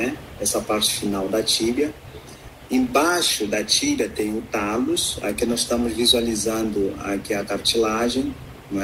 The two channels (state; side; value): identical; both; correlation 1.00